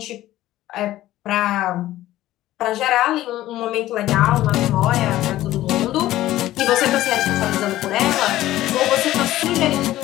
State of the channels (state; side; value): quieter; right; 14.9 dB